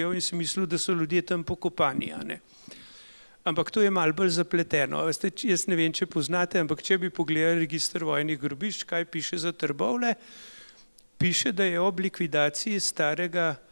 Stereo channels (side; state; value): both; inverted; correlation -1.00